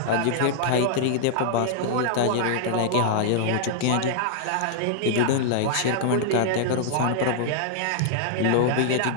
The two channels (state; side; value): different; both; correlation -0.01